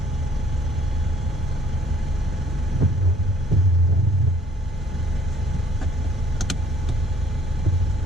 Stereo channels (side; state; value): both; normal; correlation 0.59